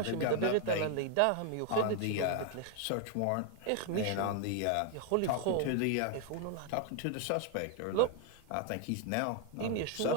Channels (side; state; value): both; different; correlation 0.00